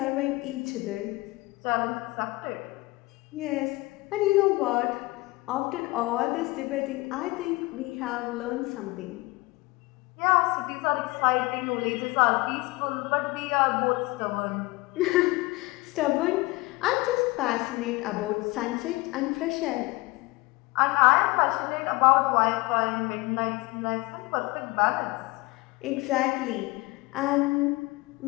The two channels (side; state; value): right; quieter; 22.3 dB